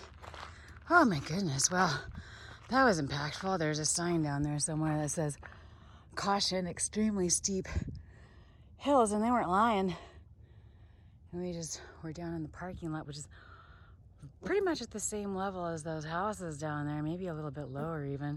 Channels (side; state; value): both; identical; correlation 1.00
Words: Oh my goodness. Well, that was impactful. There's a sign down there somewhere that says caution, extremely steep hills, and they weren't lying. And we just were down in the parking lot, which is pretty much at the same level as those houses down there, maybe a little bit lower